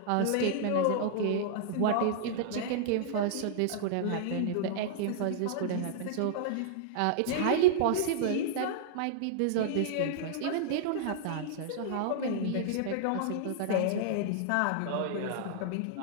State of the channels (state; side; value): different; both; correlation -0.01